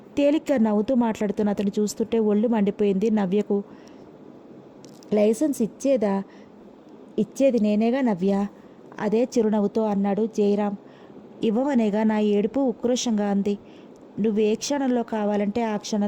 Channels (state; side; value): identical; both; correlation 1.00